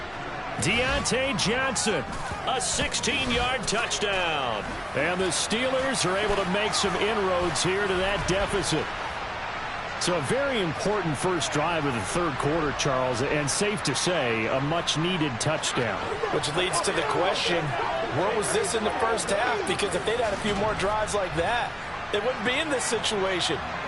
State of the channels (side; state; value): both; identical; correlation 1.00